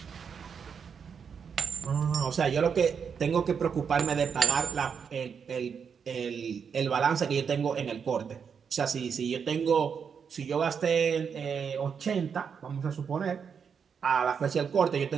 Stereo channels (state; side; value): quieter; left; 6.7 dB